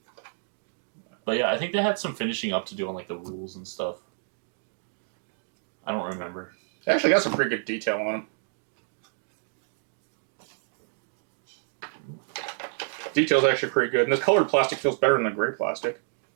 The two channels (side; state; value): left; silent; digital silence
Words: But yeah, I think they had some finishing up to do on like the rules and stuff. I don't remember. They actually got some pretty good detail on them. Detail's actually pretty good, and this colored plastic feels better than the gray plastic.